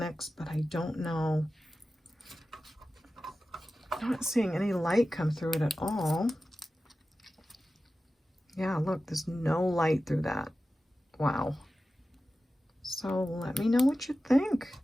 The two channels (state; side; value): normal; both; correlation 0.94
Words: but I don't know. I'm not seeing any light come through it at all. Yeah, look, there's no light through that. Wow. So let me know what you think.